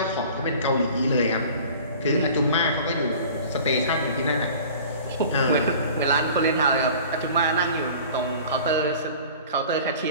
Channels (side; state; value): both; inverted; correlation -0.44